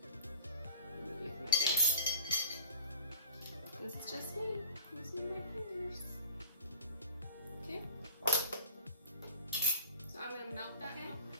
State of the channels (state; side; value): inverted; both; correlation -0.42